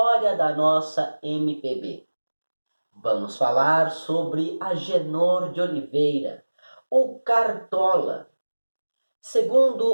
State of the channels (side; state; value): both; inverted; correlation -1.00